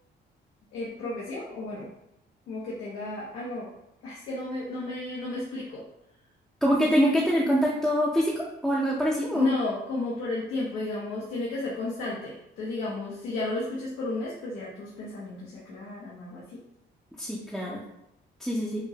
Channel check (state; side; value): normal; both; correlation 0.74